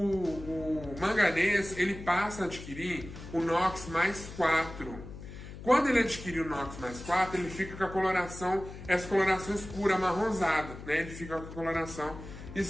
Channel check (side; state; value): left; noise; hum, 12 dB below the sound